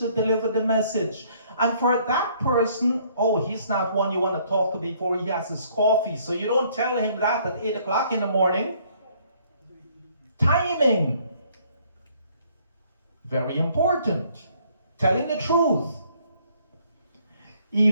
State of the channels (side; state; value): both; inverted; correlation -0.63